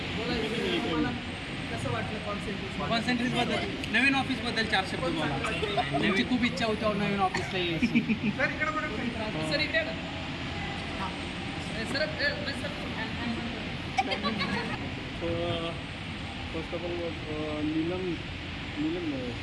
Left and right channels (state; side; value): identical; both; correlation 1.00